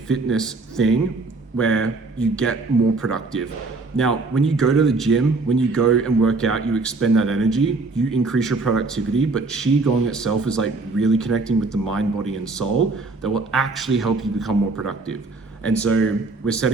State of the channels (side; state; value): left; quieter; 3.6 dB